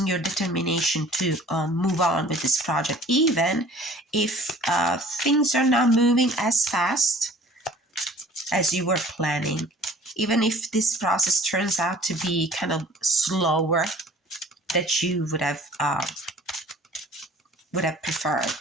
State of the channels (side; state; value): both; normal; correlation 0.49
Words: your determination to move on with this project, even if things are not moving as fast as you were planning, even if this process turns out to be kind of slower that you would have